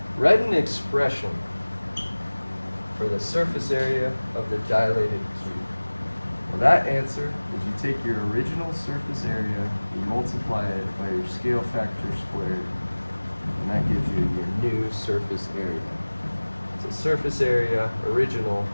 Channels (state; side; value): inverted; both; correlation -1.00